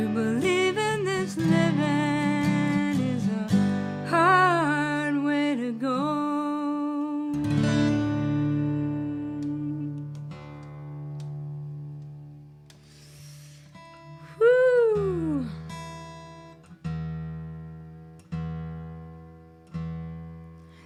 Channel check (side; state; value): both; identical; correlation 1.00